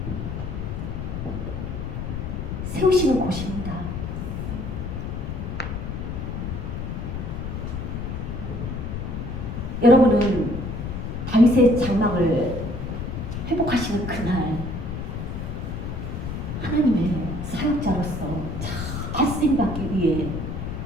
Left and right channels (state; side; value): noise; left; rumble, 5 dB below the sound